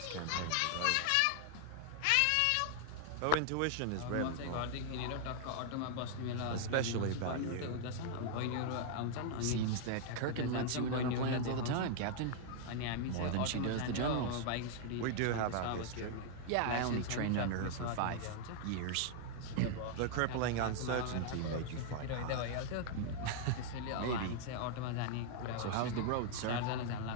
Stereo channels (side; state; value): both; different; correlation 0.00